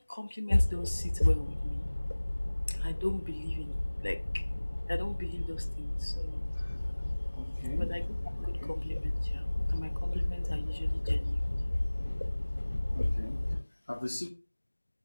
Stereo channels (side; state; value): both; inverted; correlation -1.00